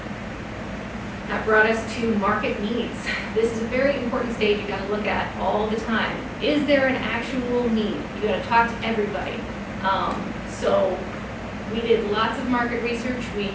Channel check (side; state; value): both; identical; correlation 1.00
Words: That brought us to market needs. This is a very important stage you got to look at all the time. Is there an actual need? You got to talk to everybody. So we did lots of market research. We